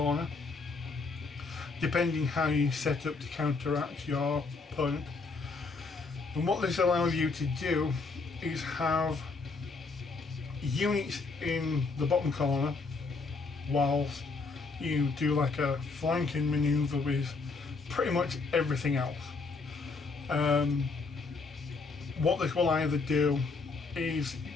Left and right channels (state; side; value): quieter; right; 4.2 dB